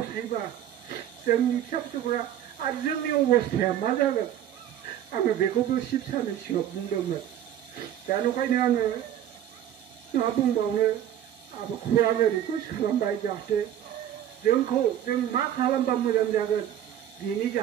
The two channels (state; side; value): quieter; left; 10.9 dB